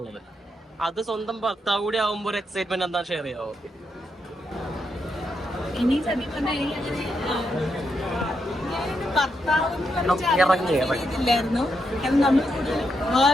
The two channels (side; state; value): both; normal; correlation 0.82